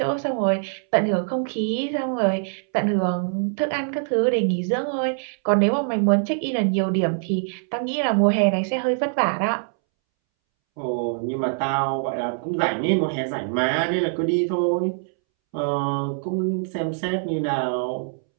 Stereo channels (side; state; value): left; silent; 63 dB below the other